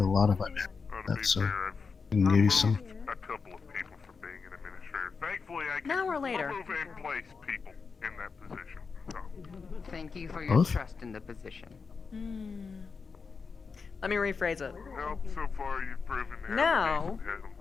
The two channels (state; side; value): quieter; right; 5.1 dB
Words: lot of my that's so I can give you some. A couple of people for being an administrator. Thankfully, I can An hour later. move and place people in that position. So. Thank you for your Both? trust in the position. Let me rephrase it. Well, so far you've proven to have Now- a decent head on